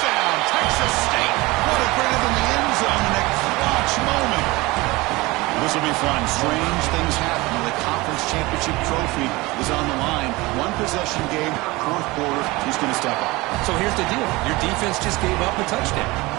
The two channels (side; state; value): left; quieter; 21.9 dB